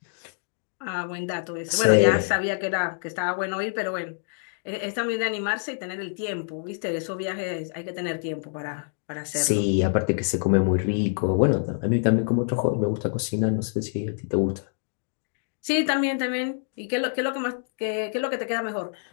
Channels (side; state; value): right; silent; digital silence